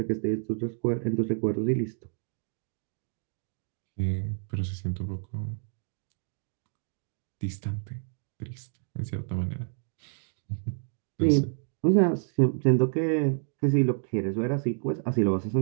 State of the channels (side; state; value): left; silent; digital silence